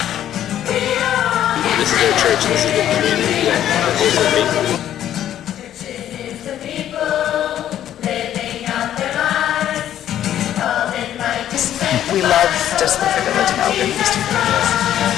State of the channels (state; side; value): quieter; right; 11.3 dB